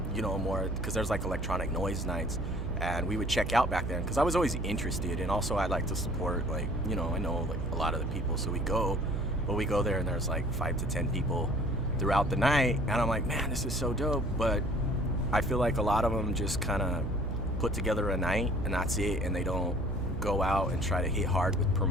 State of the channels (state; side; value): noise; right; hum, 4 dB below the sound